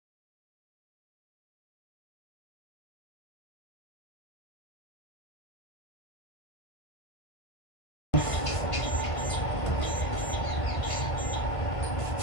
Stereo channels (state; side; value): late; right; 1.5 ms